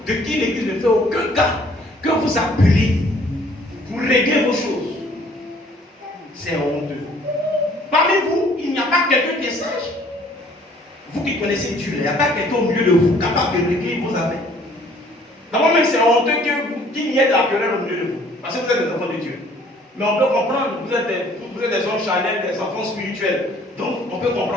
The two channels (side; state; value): both; normal; correlation 0.58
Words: de qui l'église ne fait aucun cas, que vous appelez pour régler vos choses. C'est honteux. Parmi vous, il n'y a pas quelqu'un qui est sage. Vous qui connaissez Dieu, il n'y a pas quelqu'un au milieu de vous capable de régler vos affaires. D'abord même, c'est honteux qu'il n'y ait de la querelle au milieu de vous. Parce que vous êtes des enfants de Dieu. Mais on peut comprendre, vous êtes des hommes charnels, des enfants spirituels. Donc, on peut